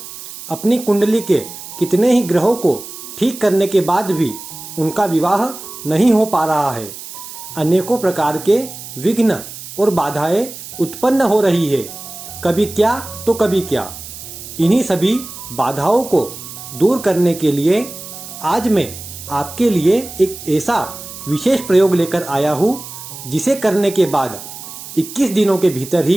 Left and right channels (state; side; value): noise; right; hiss, 13 dB below the sound